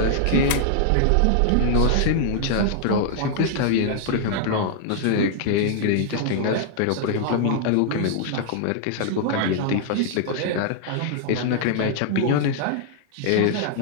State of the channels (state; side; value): different; both; correlation -0.01